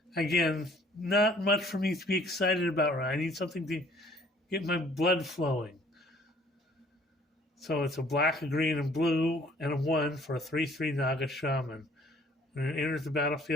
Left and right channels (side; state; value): both; normal; correlation 0.57